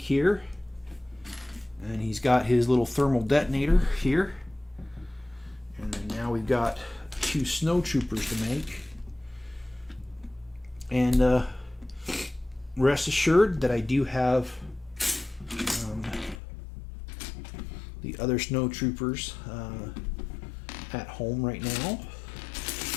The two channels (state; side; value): drops out; right; at 16.4 s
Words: here, and he's got his little thermal detonator here. And then now we've got 2 snow troopers to make. And rest assured that I do have the other snow troopers at home right now.